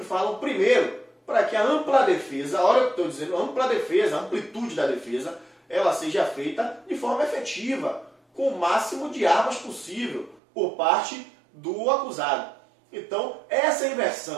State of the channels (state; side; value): drops out; left; at 10.4 s